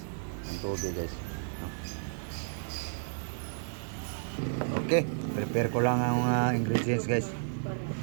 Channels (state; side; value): silent; left; digital silence